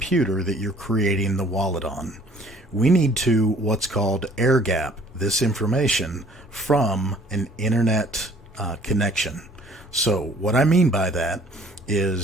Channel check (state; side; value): normal; both; correlation 0.56